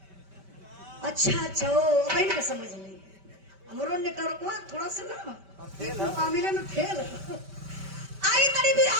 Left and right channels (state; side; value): late; left; 5.1 ms